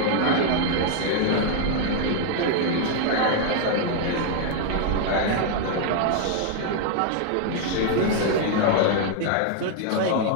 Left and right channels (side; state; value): both; different; correlation 0.00